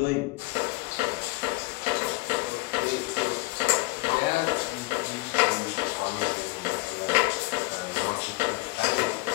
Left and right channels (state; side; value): quieter; right; 22.9 dB